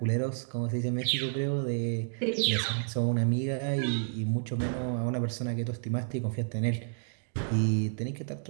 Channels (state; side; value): silent; left; digital silence